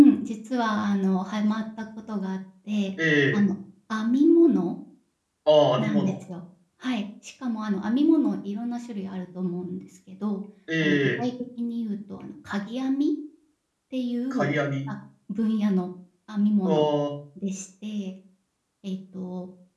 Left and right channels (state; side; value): identical; both; correlation 1.00